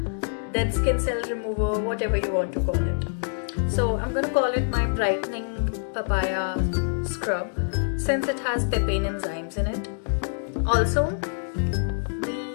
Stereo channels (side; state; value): right; silent; digital silence